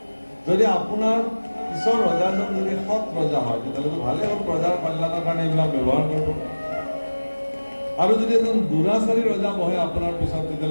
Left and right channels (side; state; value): both; inverted; correlation -1.00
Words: যদি আপোনাৰ পিছৰ ৰজাজন যদি সৎ ৰজা হয় তেতিয়াহ'লেতো ভালেই হ'ল প্ৰজাৰ কল্যাণৰ কাৰণে এইবিলাক ব্যৱহাৰ কৰিব আৰু যদি এজন দুৰাচাৰী ৰজা বহে আপোনাৰ পিছত